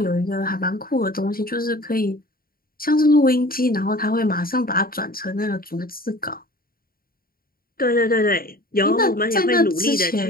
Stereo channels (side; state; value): right; late; 0.43 ms